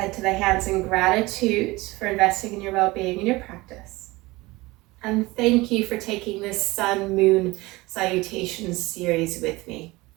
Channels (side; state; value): left; quieter; 21.4 dB